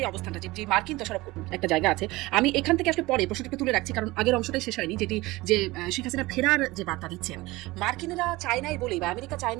অবস্থানটা, যে মার্কিন দোষারোপ একটা জায়গা আছে, আমি এখান থেকে আসলে পরে প্রশ্নটাকে তুলে রাখছি, কারণ আগের অংশটাই শেষ হয়নি, যেটি যে শেখ হাসিনা ফেরার যে বার্তা দিচ্ছেন, মার্কিনেরা চায় নাই বলেই বা আমেরিকা চায়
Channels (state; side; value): quieter; left; 20.5 dB